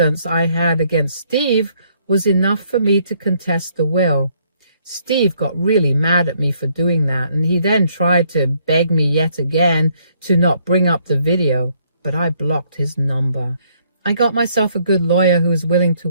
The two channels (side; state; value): both; inverted; correlation -0.68